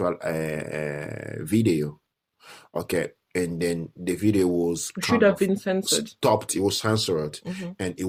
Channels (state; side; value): identical; both; correlation 1.00